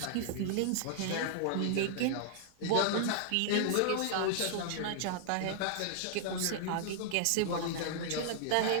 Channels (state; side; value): different; both; correlation -0.01